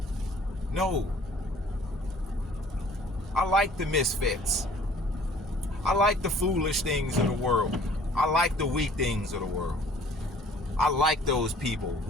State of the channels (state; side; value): normal; both; correlation 0.54